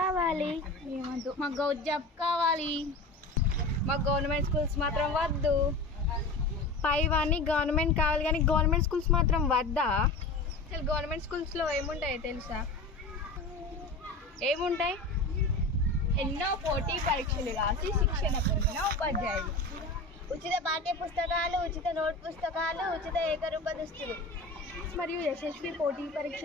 మాకు గౌట్ జాబ్ కావాలి, మాకు గవర్నమెంట్ స్కూల్స్ మాత్రం వద్దు. పైవన్నీ గవర్నమెంట్ కావాలి కానీ గవర్నమెంట్ స్కూల్స్ మాత్రం వద్దా? అసలు గవర్నమెంట్ స్కూల్స్లో ఏముంటాయి తెలుసా? ఏముంటాయి? ఎన్నో పోటీ పరీక్షలు రాసి శిక్షణ పొందిన ఉపాధ్యాయులు, ఉచిత పాఠ్య పుస్తకాలు, ఉచిత నోట్ పుస్తకాలు, ఉచిత ఏకరూప దుస్తులు మరియు యశస్వి పోటీ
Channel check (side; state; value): right; quieter; 3.1 dB